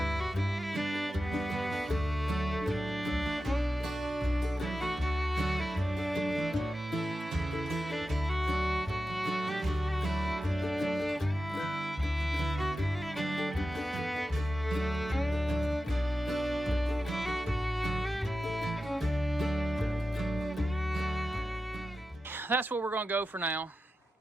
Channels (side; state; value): both; normal; correlation 0.92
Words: That's what we're going to go for now.